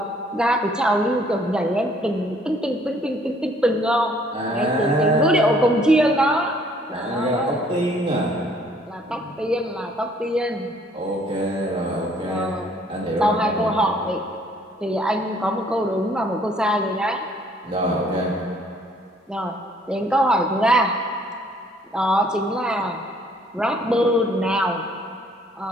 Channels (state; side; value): normal; both; correlation 0.62